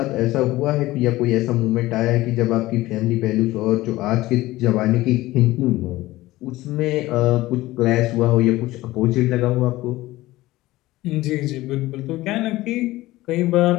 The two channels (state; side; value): quieter; right; 17.8 dB